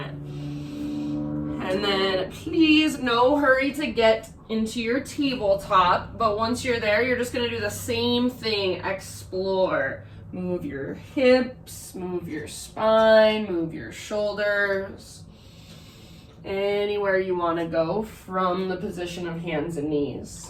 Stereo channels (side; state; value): both; identical; correlation 1.00